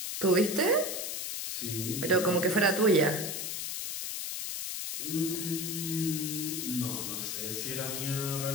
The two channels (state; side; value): noise; left; hiss, 4 dB below the sound